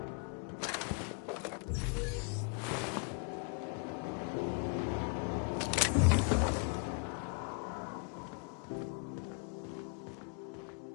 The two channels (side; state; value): right; quieter; 38.1 dB